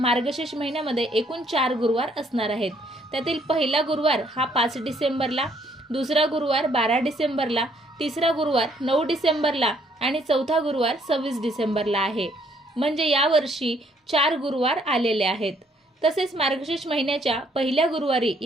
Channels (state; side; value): normal; both; correlation 0.67